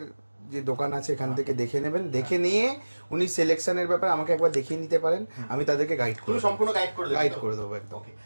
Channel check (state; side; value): inverted; both; correlation -1.00